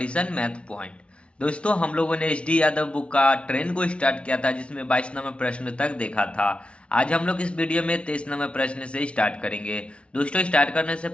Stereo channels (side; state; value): right; late; 0.060 ms